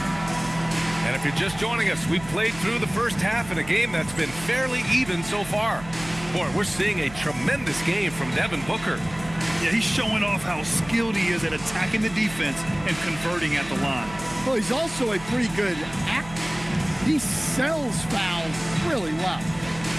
And if you're just joining us, we've played through the first half in a game that's been fairly even so far. Boy, we're seeing a tremendous game from Devin Booker. Yeah, he's showing off how skilled he is at attacking the defense and converting at the line. Well, he's also a pretty good actor. He sells fouls really well.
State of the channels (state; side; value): noise; right; hum, 16 dB below the sound